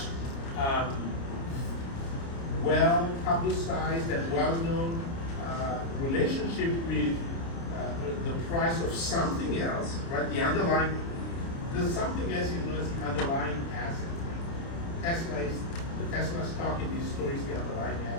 well publicized and well-known relationship with the price of something else, right? The underlying, the something else is known as the underlying asset. The Tesla stock in this story is the underlying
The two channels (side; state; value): right; late; 29 ms